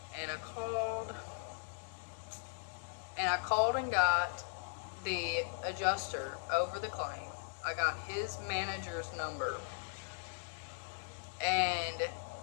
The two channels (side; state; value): right; silent; digital silence